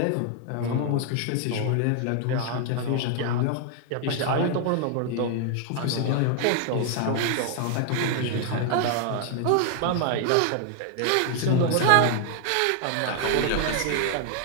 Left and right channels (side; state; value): both; different; correlation 0.00